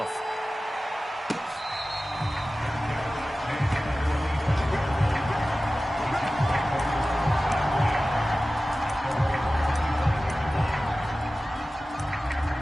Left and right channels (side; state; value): both; normal; correlation 0.96